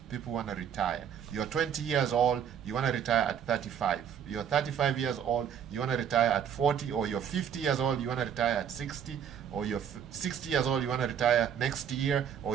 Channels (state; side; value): quieter; left; 8.4 dB